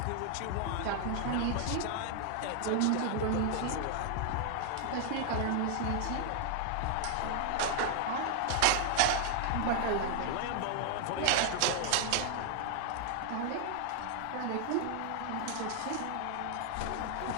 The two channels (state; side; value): different; both; correlation 0.00